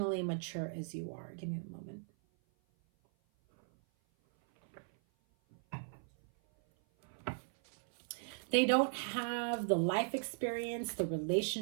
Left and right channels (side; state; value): left; silent; 53 dB below the other